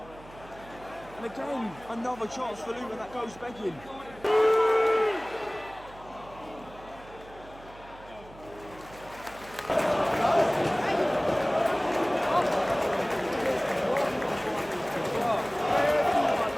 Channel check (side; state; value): right; noise; hum, 20 dB below the sound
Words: And again, another chance for Luton that goes begging.